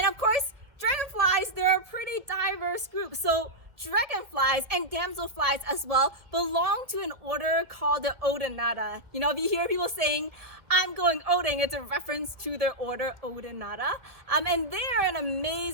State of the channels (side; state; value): left; late; 1.5 ms